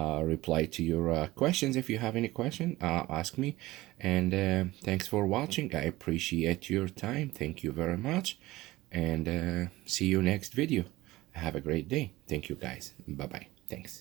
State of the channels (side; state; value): left; quieter; 18.4 dB